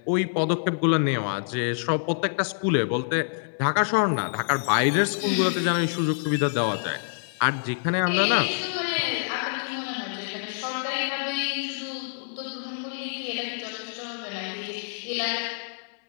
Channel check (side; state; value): right; silent; 61 dB below the other